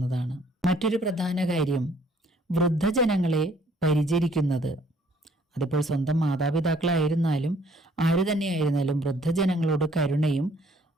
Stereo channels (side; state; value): both; normal; correlation 0.61